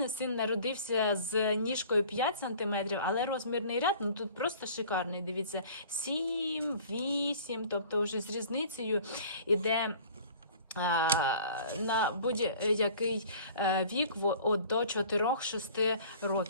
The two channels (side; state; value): both; inverted; correlation -0.48